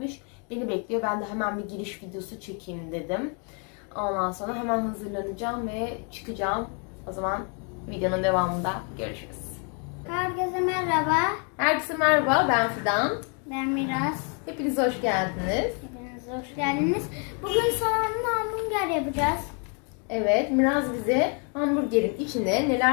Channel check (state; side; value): quieter; right; 38.6 dB